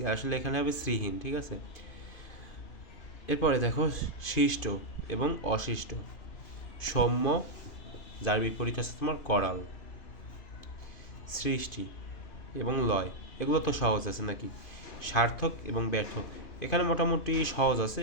আসলে এখানে হবে শ্রীহীন, ঠিক আছে। এরপরে দেখো শিষ্ট এবং অশিষ্ট, সৌম্য যার বিপরীত আছে তোমার করাল, সৃষ্টি এবং লয়, এগুলো তো সহজ আছে নাকি। সার্থক এবং ব্যর্থ, এখানে মোটামুটি সহজ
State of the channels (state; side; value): late; right; 2.5 ms